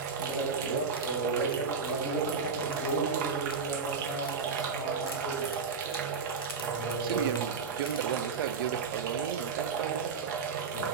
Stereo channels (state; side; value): quieter; left; 5.4 dB